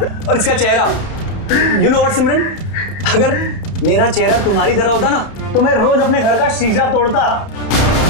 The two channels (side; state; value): right; late; 31 ms